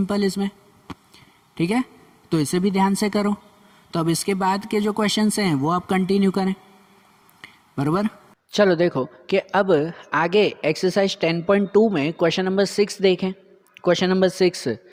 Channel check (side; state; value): both; identical; correlation 1.00